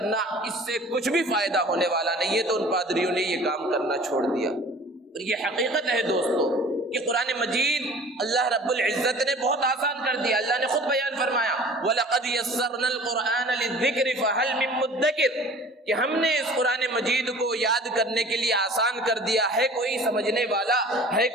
اس سے کچھ بھی فائدہ ہونے والا نہیں ہے۔ تو ان پادریوں نے یہ کام کرنا چھوڑ دیا، اور یہ حقیقت ہے دوستو کہ قرآن مجید اللہ رب العزت نے بہت آسان کر دیا۔ اللہ نے خود بیان فرمایا وَلَقَدْ يَسَّرْنَا الْقُرْآنَ لِلذِّكْرِ فَهَلْ مِن مُدَّكِرٍ، کہ ہم نے اس قرآن مجید کو یاد کرنے کے لیے آسان کر دیا ہے، کوئی سمجھنے والا ہے،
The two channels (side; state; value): both; normal; correlation 0.45